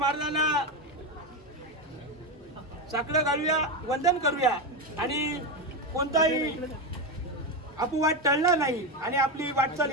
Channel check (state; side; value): normal; both; correlation 0.13